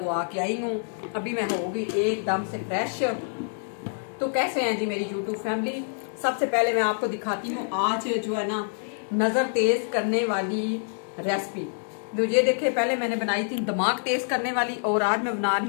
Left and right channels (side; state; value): right; silent; digital silence